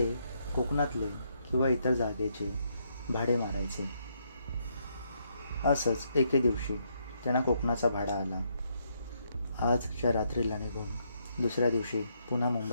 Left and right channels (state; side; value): inverted; both; correlation -0.75